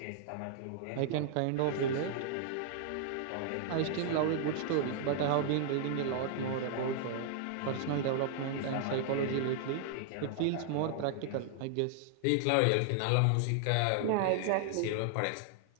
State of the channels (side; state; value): both; different; correlation -0.01